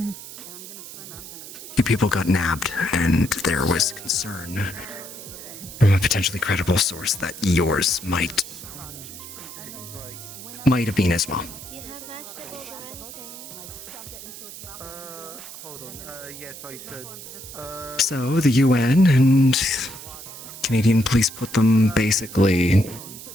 people got nabbed, and there was concern from a potentially credible source that yours might have been as well. Hold on. Yes, I should. So the UN and Canadian police put them basically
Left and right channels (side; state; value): right; noise; hiss, 13 dB below the sound